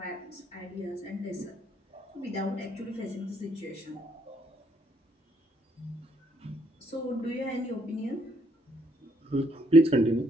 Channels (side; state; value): both; normal; correlation 0.70